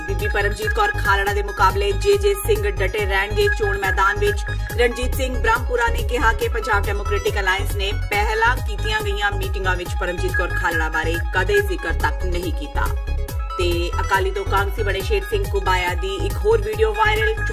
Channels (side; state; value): both; identical; correlation 1.00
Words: ਬੀਬੀ ਪਰਮਜੀਤ ਕੌਰ ਖਾਲੜਾ ਦੇ ਮੁਕਾਬਲੇ ਜੇ ਸਿੰਘ ਡਟੇ ਰਹਿਣਗੇ ਚੋਣ ਮੈਦਾਨ ਵਿੱਚ। ਰਣਜੀਤ ਸਿੰਘ ਬ੍ਰਹਮਪੁਰਾ ਨੇ ਕਿਹਾ ਕਿ ਪੰਜਾਬ ਡੈਮੋਕ੍ਰੈਟਿਕ ਅਲਾਇੰਸ ਨੇ ਪਹਿਲਾਂ ਕੀਤੀਆਂ ਗਈਆਂ ਮੀਟਿੰਗਾਂ ਵਿੱਚ ਪਰਮਜੀਤ ਕੌਰ ਖਾਲੜਾ ਬਾਰੇ ਕਦੇ ਜ਼ਿਕਰ ਤੱਕ ਨਹੀਂ ਕੀਤਾ। ਤੇ ਅਕਾਲੀ ਤੋਂ ਕਾਂਗਰਸੀ ਬਣੇ ਸ਼ੇਰ ਸਿੰਘ ਕੁਬਾਇਆ ਦੀ ਇੱਕ ਹੋਰ ਵੀਡੀਓ ਵਾਇਰਲ।